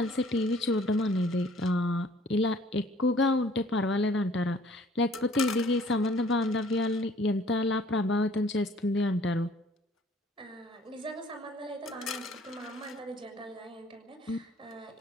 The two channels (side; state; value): both; normal; correlation 0.56